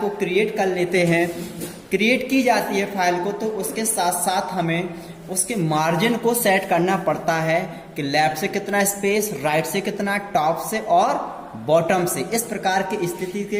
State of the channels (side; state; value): both; identical; correlation 1.00